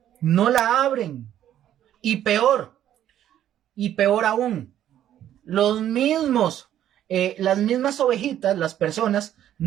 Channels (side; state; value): left; quieter; 11.3 dB